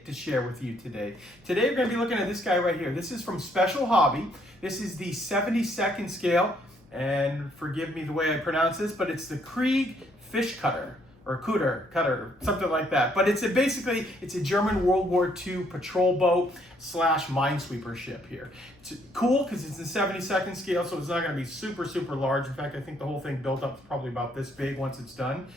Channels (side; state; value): left; noise; hum, 29 dB below the sound